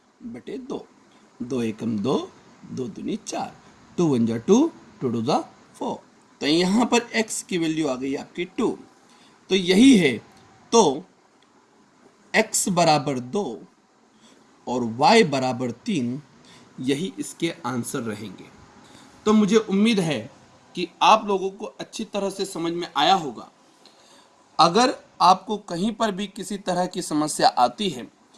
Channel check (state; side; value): identical; both; correlation 1.00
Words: बटे 2। 2 एकम 2, 2 दूनी 4, 2 1 जा 2, 2 2 जा 4। तो यहाँ पर x की वैल्यू आ गई आपकी 2। तो यही है, तो x बराबर 2, और y बराबर 3, यही इसके आंसर रहेंगे। तो मुझे उम्मीद है कि आप लोगों को अच्छी तरह से समझ में आया होगा। अगर आपको कहीं पर भी किसी तरह की समस्या आती है